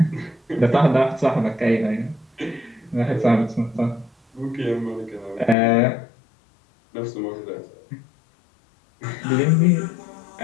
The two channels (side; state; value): right; drops out; at 5.6 s